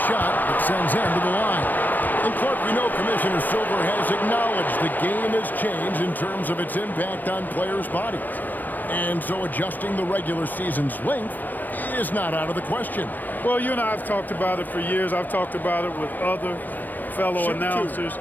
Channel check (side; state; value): right; late; 0.085 ms